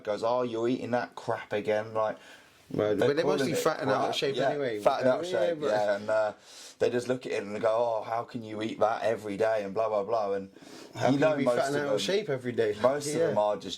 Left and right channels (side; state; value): both; identical; correlation 1.00